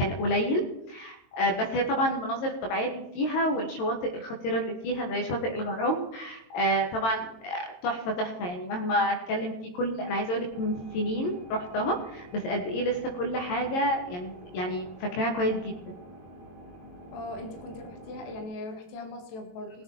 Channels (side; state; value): right; late; 22 ms